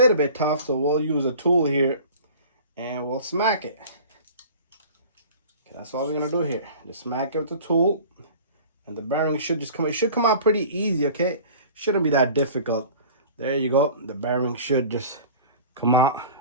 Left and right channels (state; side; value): inverted; both; correlation -0.42